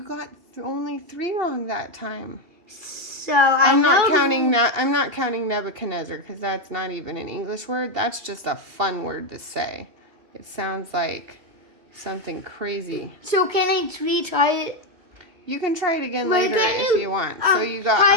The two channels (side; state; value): left; late; 2.8 ms